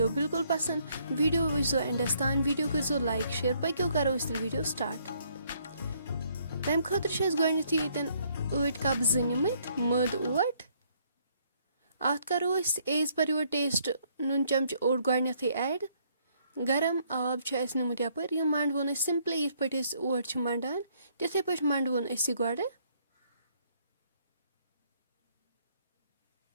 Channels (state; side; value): inverted; both; correlation -0.68